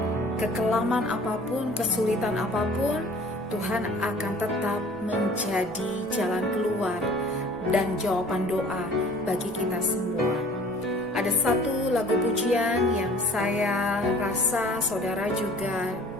kekelaman apapun, kesulitan apapun, Tuhan akan tetap menjadi jalan keluar dan jawaban doa bagi kita semua. Ada satu lagu pujian yang saya rasa saudara juga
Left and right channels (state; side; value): normal; both; correlation 0.49